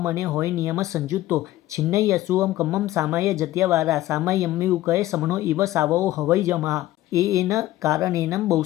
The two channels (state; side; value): quieter; right; 15.3 dB